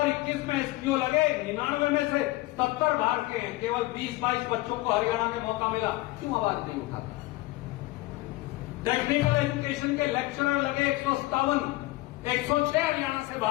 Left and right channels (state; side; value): quieter; right; 19.5 dB